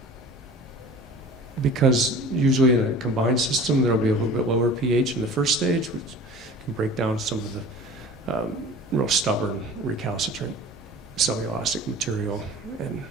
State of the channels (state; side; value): normal; both; correlation 0.42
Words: Because usually in a combined system, there'll be a little bit lower pH in the first stage, which can break down some of the real stubborn, recalcitrant cellulosic material, and